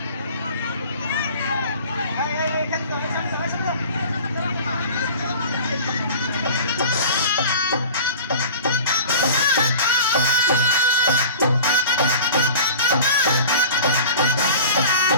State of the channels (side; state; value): both; inverted; correlation -0.39